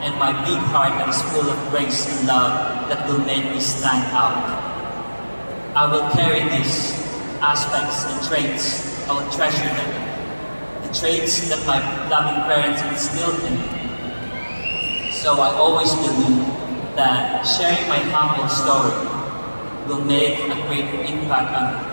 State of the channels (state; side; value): inverted; both; correlation -1.00